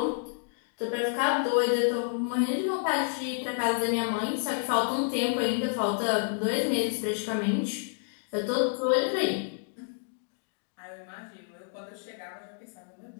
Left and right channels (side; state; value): right; silent; digital silence